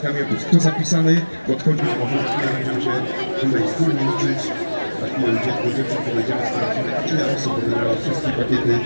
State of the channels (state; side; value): inverted; both; correlation -1.00